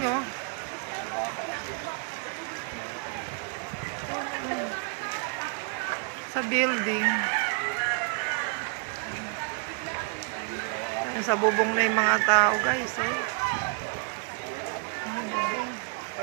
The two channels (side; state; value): left; quieter; 37.8 dB